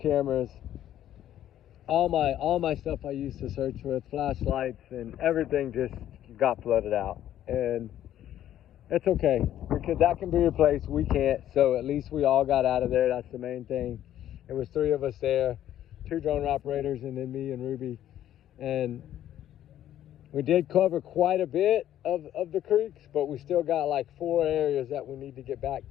all my stuff I used to search with, flashlights and everything just got flooded out. And it's okay because that can be replaced. We can't. So at least we all got out of there. That's the main thing. It was 3 of us there, 2 drone operators and then me and Ruby. And We did cover quite a bit of the creeks, but we still got like 4 areas that we need to get back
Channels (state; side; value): quieter; right; 11.8 dB